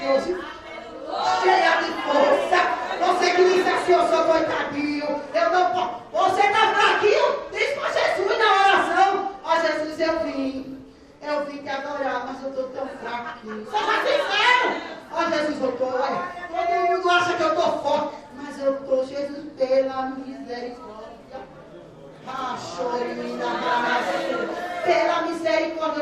hoje cheia de força. Você que disse assim, eu sou coitadinho, eu não posso. Você está fraquinho? Diz para Jesus na oração. Jesus, eu vim te adorar, mas eu estou tão fraquinho. Seja sincero. Jesus, eu estou. Todo mundo acha que eu estou forte, mas eu estou, Jesus, pela misericórdia. Pela misericórdia,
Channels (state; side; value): identical; both; correlation 1.00